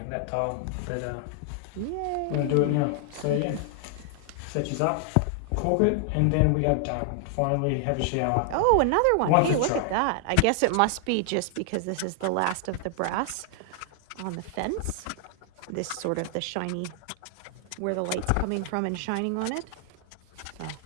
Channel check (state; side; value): different; both; correlation 0.00